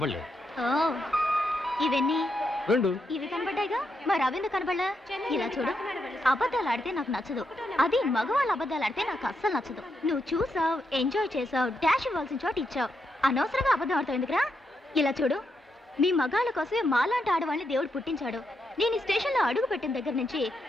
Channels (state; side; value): normal; both; correlation 0.82